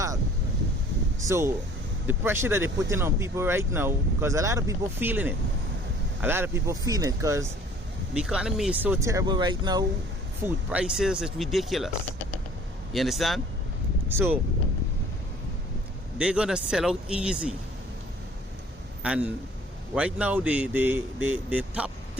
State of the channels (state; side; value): normal; both; correlation 0.53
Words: So the pressure that they're putting on people right now, because a lot of people feeling it. A lot of people feeling it because the economy is so terrible right now. Food prices is ridiculous. You understand? So they're gonna sell out easy. And right now the top